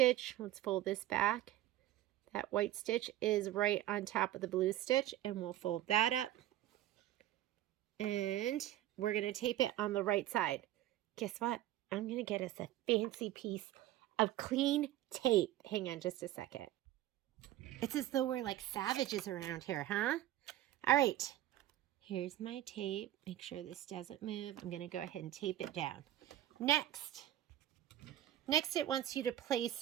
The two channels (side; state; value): left; quieter; 13.7 dB